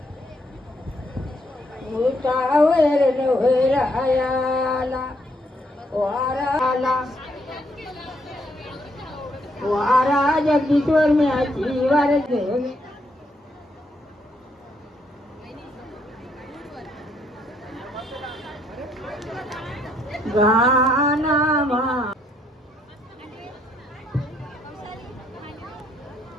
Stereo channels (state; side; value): normal; both; correlation 0.72